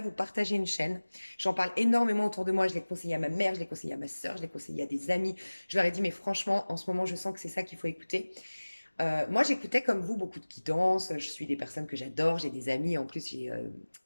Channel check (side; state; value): both; inverted; correlation -1.00